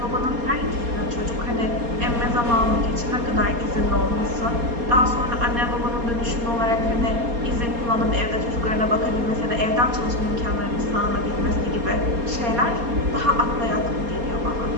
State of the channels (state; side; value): late; left; 4.2 ms